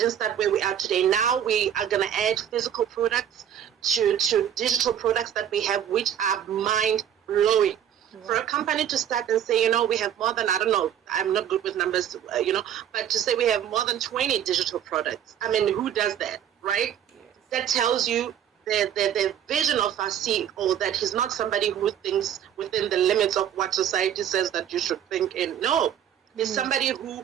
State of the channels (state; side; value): quieter; left; 9.8 dB